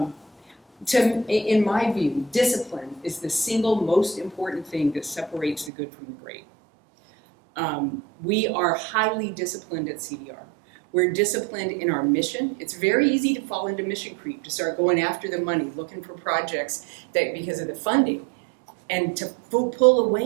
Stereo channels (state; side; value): drops out; left; at 5.7 s